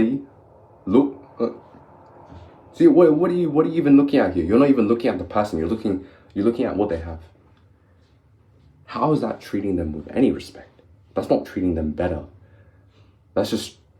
look. See, what are you even looking at here? You're not even looking at the person. You're looking at what they have. How is that treating them with any respect? That's not treating them better. That's just,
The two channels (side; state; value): both; identical; correlation 1.00